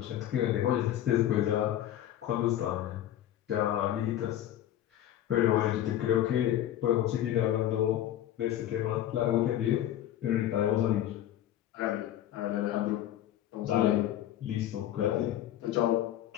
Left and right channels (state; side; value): quieter; right; 12.2 dB